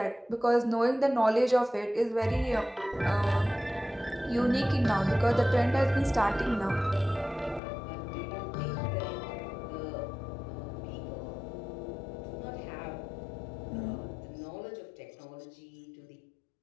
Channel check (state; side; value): drops out; right; at 7.6 s